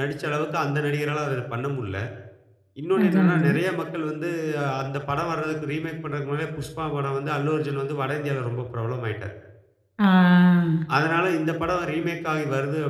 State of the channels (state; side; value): identical; both; correlation 1.00